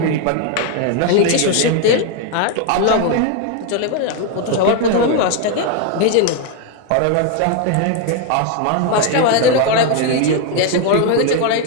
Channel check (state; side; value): different; both; correlation 0.01